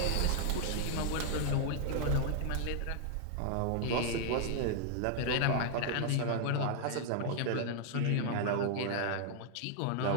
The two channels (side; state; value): both; different; correlation -0.01